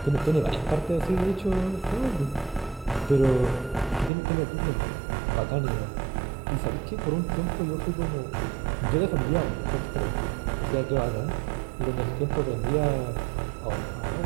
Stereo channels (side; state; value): left; drops out; at 4.1 s